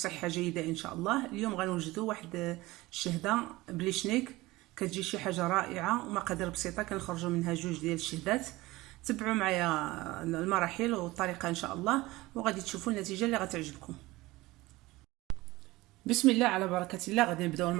جيده ان شاء الله. اليوم غنوجدوا واحد الشهده بلي شنيك، كتجي شي حاجه رائعه ومقادير بسيطه كنخرجوا منها جوج ديال الشهدات. تبعوا معايا المراحل والطريقه ان شاء الله وغادي تشوفوا النتيجه اللي غتعجبكم. بسم الله على بركه الله. غادي نبداو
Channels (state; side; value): quieter; left; 19.6 dB